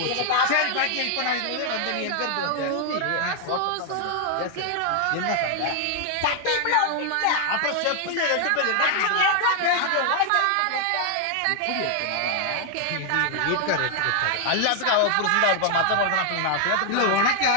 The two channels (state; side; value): different; both; correlation 0.00